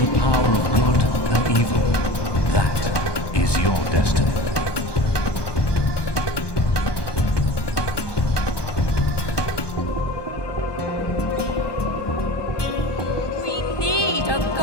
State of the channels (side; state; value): right; late; 1.2 ms